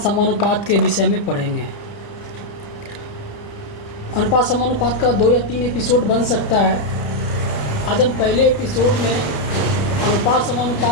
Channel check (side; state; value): right; late; 31 ms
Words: समानुपात के विषय में पढ़ेंगे। अनुपात समानुपात का 2 या 3 एपिसोड बन सकता है। आज हम पहले एपिसोड में अनुपात